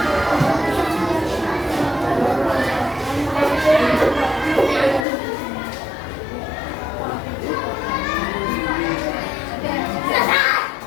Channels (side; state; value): right; drops out; at 5.1 s